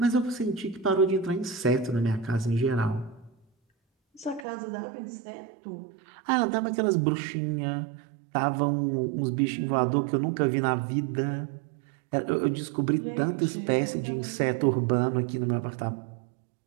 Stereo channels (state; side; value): drops out; left; at 4.5 s